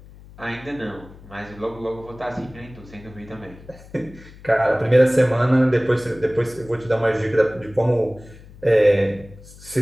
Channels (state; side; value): noise; left; hum, 20 dB below the sound